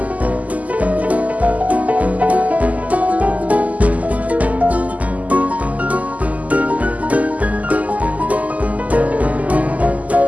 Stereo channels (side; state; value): left; late; 0.075 ms